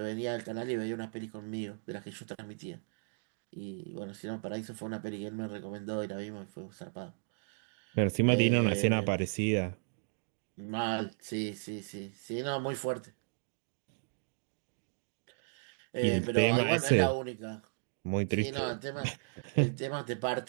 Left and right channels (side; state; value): left; silent; digital silence